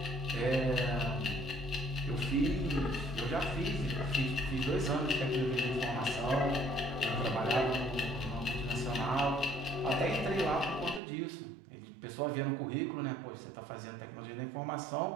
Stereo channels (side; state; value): left; drops out; at 11.0 s